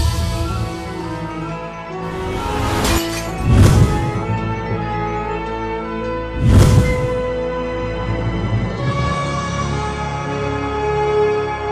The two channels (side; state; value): both; identical; correlation 1.00